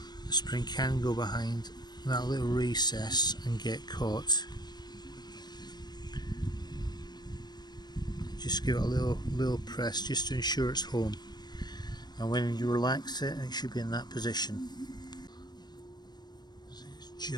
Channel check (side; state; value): right; late; 0.20 ms